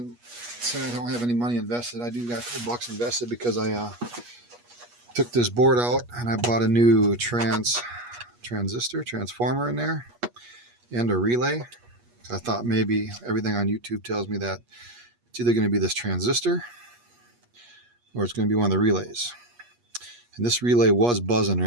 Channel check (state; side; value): late; left; 8.3 ms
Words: say I don't have any money invested. I do got a couple bucks invested because I took this board out and I bought a new transformer in there and a relay. I thought maybe everything on YouTube tells me that it's either going to be this transistor or it's going to be one of the relays. And this relay was buzzing